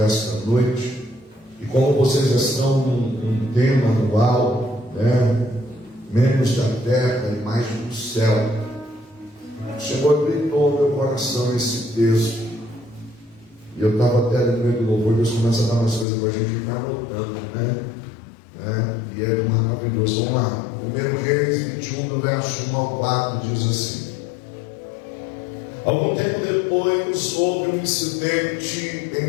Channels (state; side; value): drops out; right; at 16.1 s